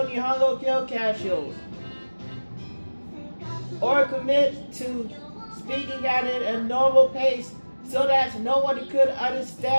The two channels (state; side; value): inverted; both; correlation -1.00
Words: Nihongo Kyokashos, or commit to speaking at it at a normal pace so that no one could